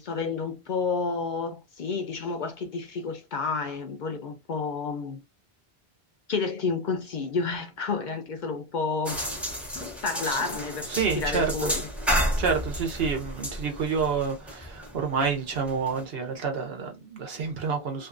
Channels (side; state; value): both; normal; correlation 0.09